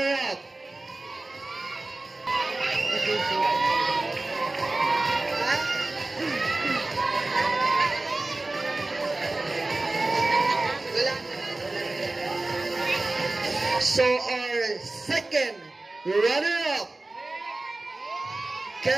So our second runner-up,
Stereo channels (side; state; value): left; quieter; 3.0 dB